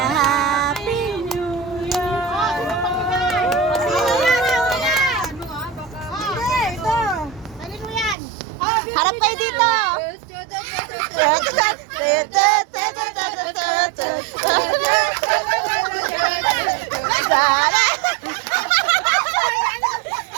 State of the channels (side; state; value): left; drops out; at 8.2 s